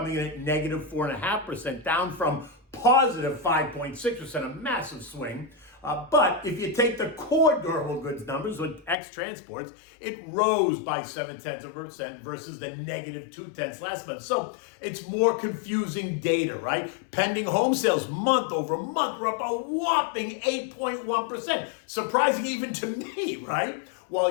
in at negative 4.5%, down from positive 5.6%, a massive swing. But if you take the core durable goods numbers with X transports, it rose by 0.7% versus the negative 0.2 last month. So it's more confusing data, right? Pending home sales month over month were up a whopping 8.1%. Surprising even to me, right?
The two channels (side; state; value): right; drops out; at 9.0 s